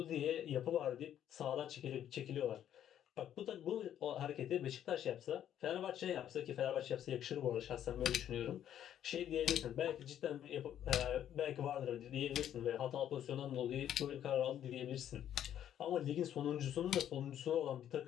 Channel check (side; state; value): right; quieter; 10.5 dB